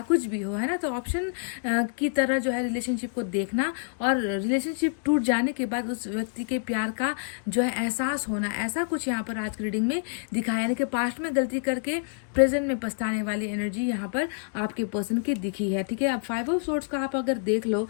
कुछ भी हो, है ना। तो ऑप्शन की तरह जो है रिलेशनशिप को देखना, और रिलेशनशिप टूट जाने के बाद उस व्यक्ति के प्यार का जो है एहसास होना, ऐसा कुछ यहाँ पर आज की रीडिंग में दिखाया। यानी कि पास्ट में गलती करके प्रेजेंट में पछताने वाली एनर्जी यहाँ पर आपके पर्सन की दिखी है, ठीक है। अब 5 ऑफ सोर्ड्स का आप अगर देख लो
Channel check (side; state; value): right; silent; digital silence